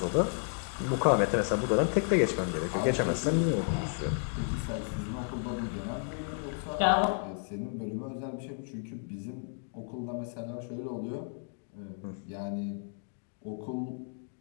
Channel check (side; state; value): right; silent; 56 dB below the other